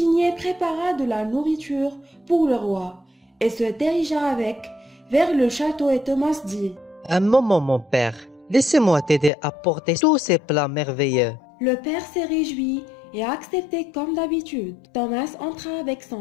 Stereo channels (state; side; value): drops out; right; at 9.3 s